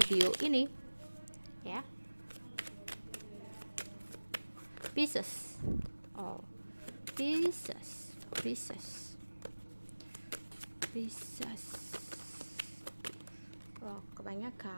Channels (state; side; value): inverted; both; correlation -1.00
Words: ini ya. Pisces. Oh, Pisces. Oh,